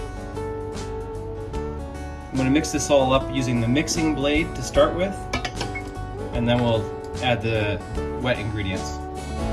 going to mix this all up using the mixing blade to start with, and then we'll add the wet ingredients.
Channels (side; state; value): both; identical; correlation 1.00